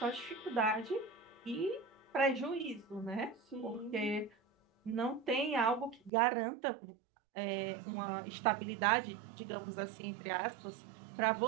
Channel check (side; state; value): left; drops out; at 6.1 s